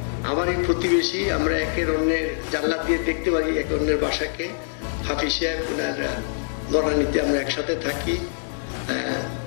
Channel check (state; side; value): silent; right; digital silence